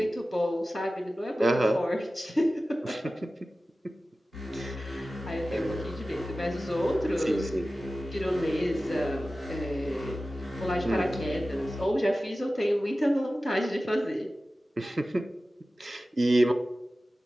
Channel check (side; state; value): both; normal; correlation 0.95